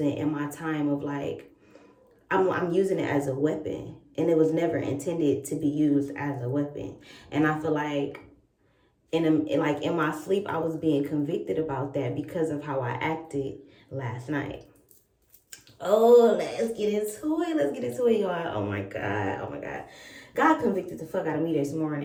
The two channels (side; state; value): both; identical; correlation 1.00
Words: in my time of like, I'm using it as a weapon. And it was never intended to be used as a weapon. And I feel like in my sleep, I was being convicted about that because of how I acted last night. Oh, let's get into it. Let's get into it, y'all. Oh my God. Oh my God. God convicted the fuck out of me this